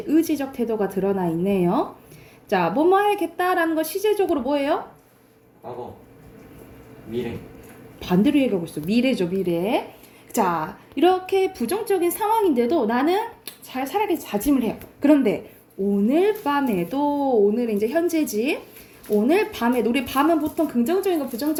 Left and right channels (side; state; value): both; identical; correlation 1.00